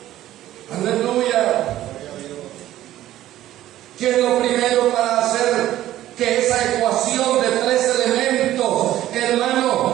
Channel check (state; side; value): quieter; left; 13.7 dB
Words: Aleluya. ¿Qué es lo primero para hacer que esa ecuación de 3 elementos,